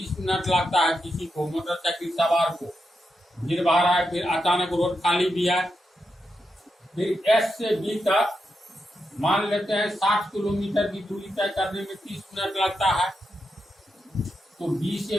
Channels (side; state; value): both; normal; correlation 0.86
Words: मिनट लगता है किसी को, मोटरसाइकिल सवार को। भीड़ भाड़ है, फिर अचानक रोड खाली भी है। फिर एस से बी तक मान लेते हैं 60 किलोमीटर की दूरी तय करने में 30 मिनट लगता है। तो बी से